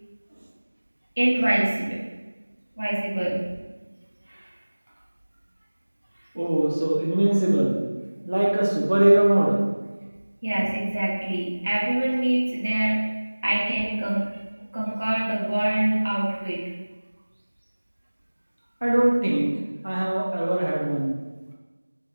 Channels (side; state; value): both; inverted; correlation -1.00